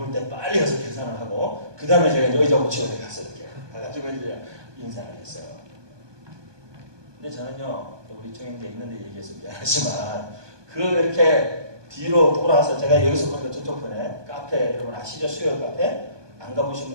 때 빨리 가서 계산을 하고 그 다음에 제가 이제 의자 고치고 가서 이렇게 가가지고 이제 인사를 했어요. 근데 저는요 우리 이충 형제 있는데 얘기해서 미안하지만 그 이렇게 뒤로 돌아서 제가 여기서 보니까 저쪽 편에 카페 여러분 아시죠? 수요일 카페 안 가보신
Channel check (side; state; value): left; late; 1.2 ms